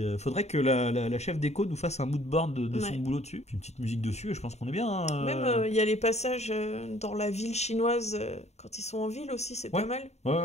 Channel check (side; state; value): right; late; 0.32 ms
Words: faudrait que la chef déco nous fasse un mood board de son boulot dessus, puis une petite musique dessus, et je pense qu'on est bien. Hein. Même, il y a les passages dans la ville chinoise, quand ils sont en ville aussi, c'est pas mal.